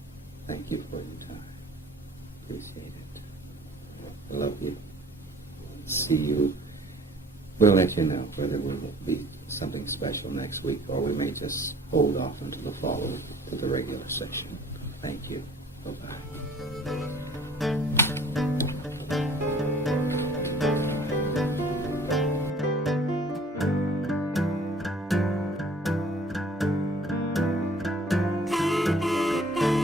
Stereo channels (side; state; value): both; normal; correlation 0.52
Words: Thank you for your time. Appreciate it. Love you. See you. We'll let you know whether it will be something special next week or we may just hold off until the follow to the regular session. Thank you. Bye-bye.